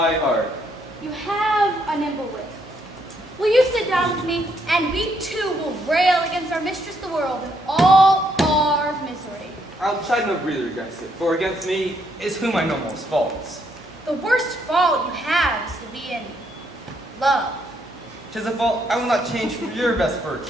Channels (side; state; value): both; normal; correlation 0.73